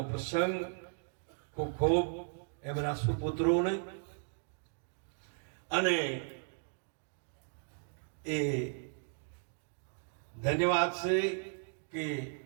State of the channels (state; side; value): silent; left; 54 dB below the other